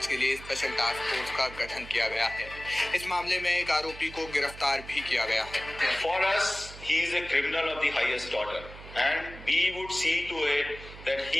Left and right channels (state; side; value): noise; right; hum, 15 dB below the sound